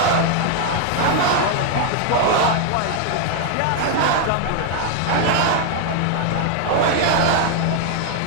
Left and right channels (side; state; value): both; different; correlation 0.00